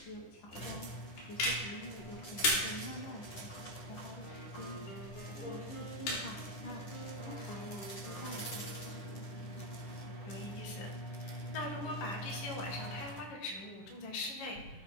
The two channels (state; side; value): late; right; 10 ms